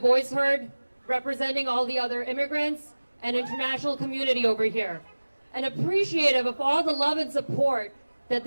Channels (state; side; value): inverted; both; correlation -1.00